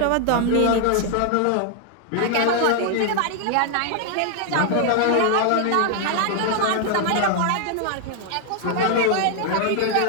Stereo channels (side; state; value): both; different; correlation 0.00